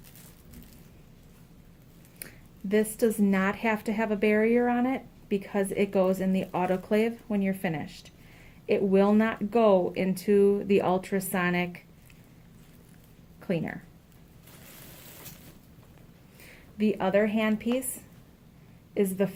This does not have to have a barrier on it because it goes in the autoclave when you're finished. It will not go into the ultrasonic cleaner. The other handpiece is the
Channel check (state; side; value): identical; both; correlation 1.00